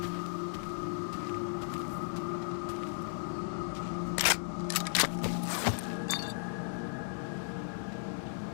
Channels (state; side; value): silent; right; 54 dB below the other